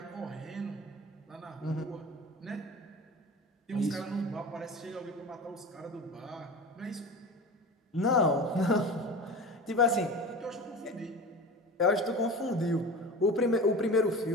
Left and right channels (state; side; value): normal; both; correlation 0.33